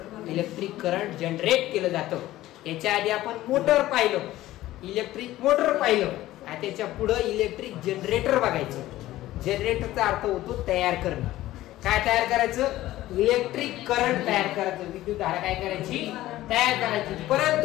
इलेक्ट्रिक करंट जनरेट केलं जातं. याच्या आधी आपण मोटर पाहिलं, इलेक्ट्रिक मोटर पाहिलं, त्याच्या पुढे इलेक्ट्रिक जनरेटर बघायचं. जनरेटरचा अर्थ होतो तयार करणं. काय तयार करायचं, इलेक्ट्रिक करंट तयार करायचं, विद्युत धारा काय करायची, तयार करायची.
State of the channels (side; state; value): right; quieter; 15.5 dB